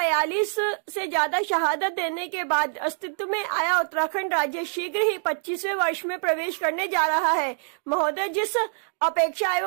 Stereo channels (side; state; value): left; silent; digital silence